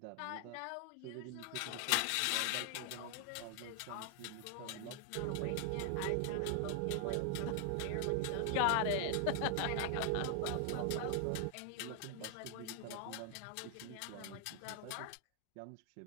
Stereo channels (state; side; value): different; both; correlation 0.00